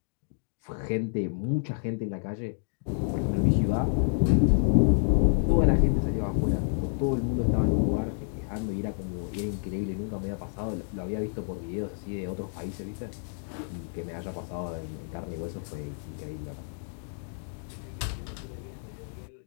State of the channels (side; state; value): right; silent; digital silence